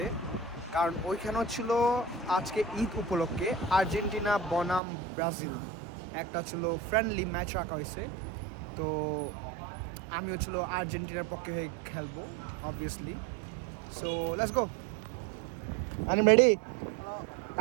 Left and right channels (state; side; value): drops out; left; at 4.8 s